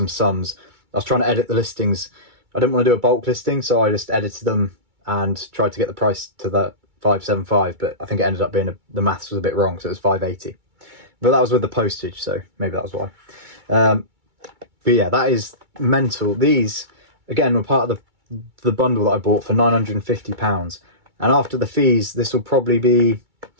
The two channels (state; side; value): late; left; 2.3 ms